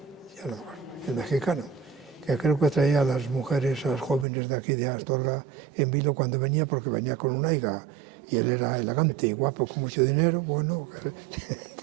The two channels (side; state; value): left; drops out; at 4.2 s